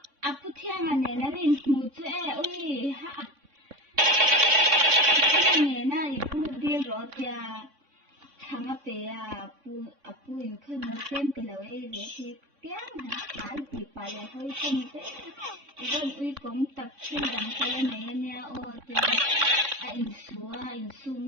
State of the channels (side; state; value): left; late; 3.6 ms